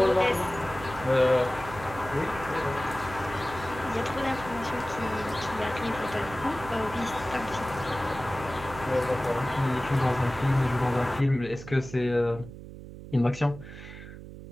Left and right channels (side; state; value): right; noise; hum, 13 dB below the sound